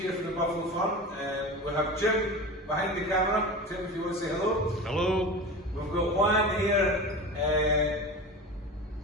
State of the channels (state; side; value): normal; both; correlation 0.30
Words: from the Buffalo Farm. We have Jim behind the camera. Jim, if you want to say hello. Hello. We've got Juan here.